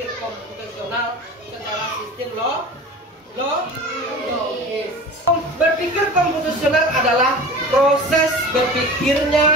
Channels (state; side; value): normal; both; correlation 0.37